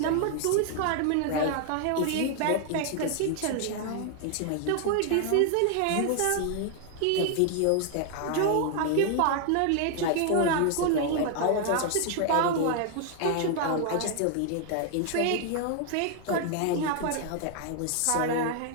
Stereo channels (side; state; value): both; different; correlation 0.00